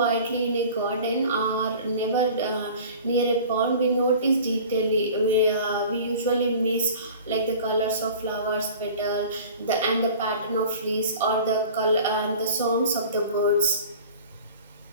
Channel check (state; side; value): inverted; both; correlation -0.43